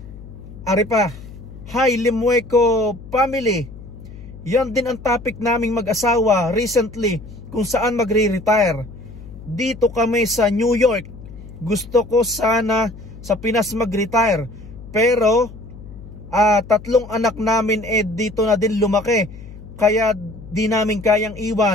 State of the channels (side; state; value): left; noise; hum, 16 dB below the sound